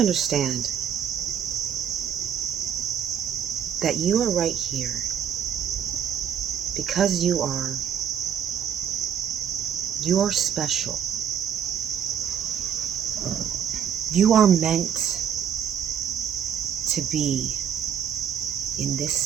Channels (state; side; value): quieter; left; 8.8 dB